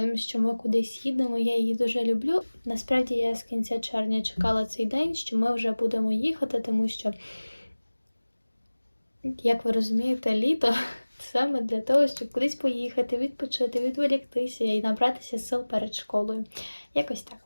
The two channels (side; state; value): both; inverted; correlation -1.00